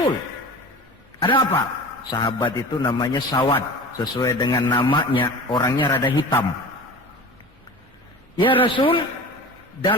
Ada apa? Sahabat itu namanya Sawad, sesuai dengan namanya, orangnya rada hitam. Ya Rasul,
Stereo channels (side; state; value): both; normal; correlation 0.35